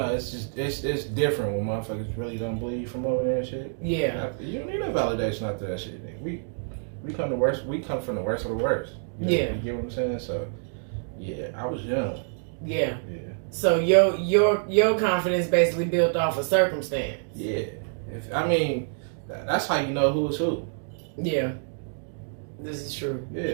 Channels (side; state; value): left; silent; digital silence